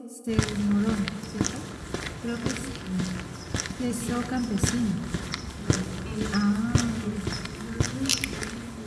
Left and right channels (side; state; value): both; identical; correlation 1.00